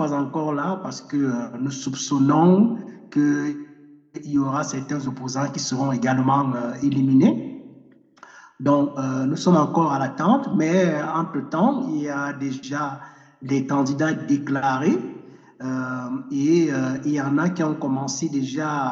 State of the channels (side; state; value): both; identical; correlation 1.00